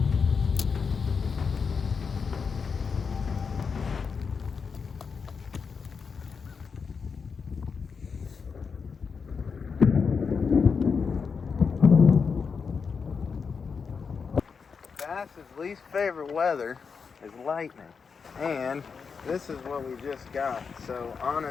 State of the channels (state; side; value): quieter; right; 5.6 dB